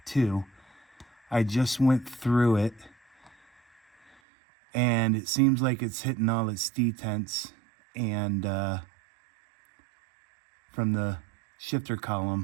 2, I just went through it, and it seems like it's hitting all its detents and from the shifter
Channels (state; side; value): drops out; left; at 4.2 s